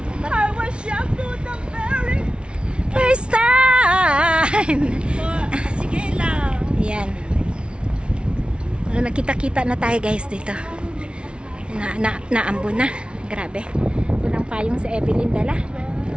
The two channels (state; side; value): late; left; 0.058 ms